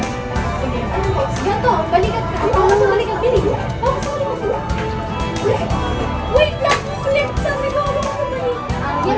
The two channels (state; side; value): identical; both; correlation 1.00